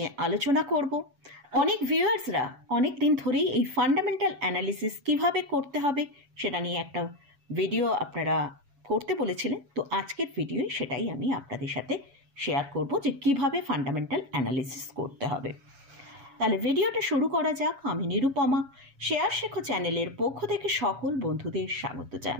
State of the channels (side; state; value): left; late; 7.1 ms